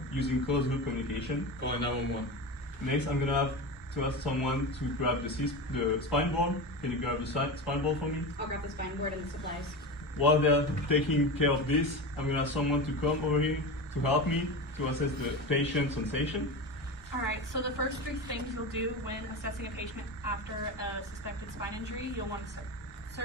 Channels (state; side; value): normal; both; correlation 0.24